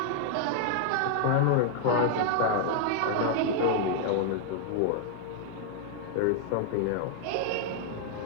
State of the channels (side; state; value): both; different; correlation 0.00